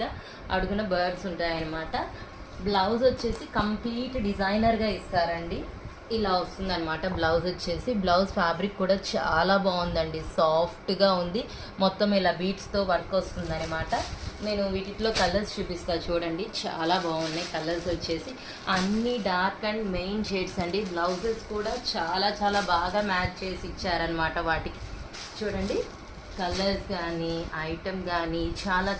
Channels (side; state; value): both; identical; correlation 1.00